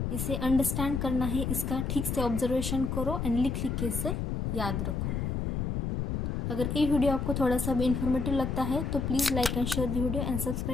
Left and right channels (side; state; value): left; noise; rumble, 2 dB below the sound